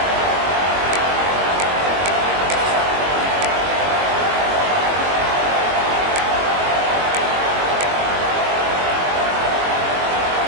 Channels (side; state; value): left; late; 22 ms